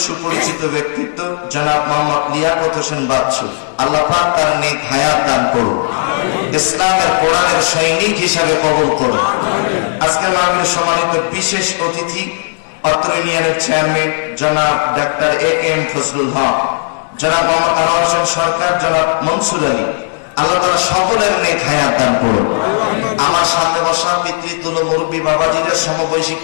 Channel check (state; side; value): silent; right; digital silence